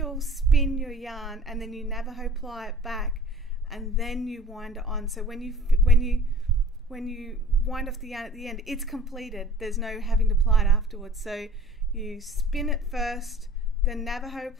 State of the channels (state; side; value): normal; both; correlation 0.47